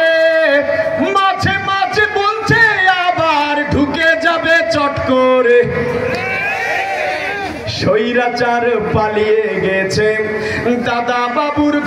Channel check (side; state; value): both; identical; correlation 1.00